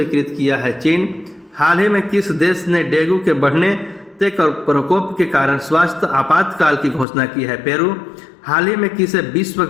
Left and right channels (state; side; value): drops out; right; at 7.1 s